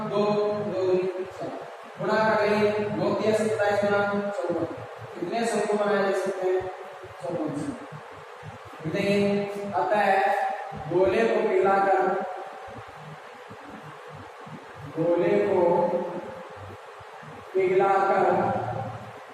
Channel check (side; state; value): both; identical; correlation 1.00